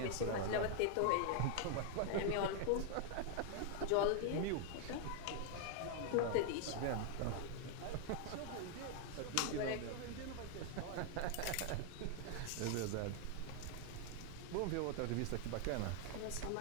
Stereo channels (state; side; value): different; both; correlation 0.00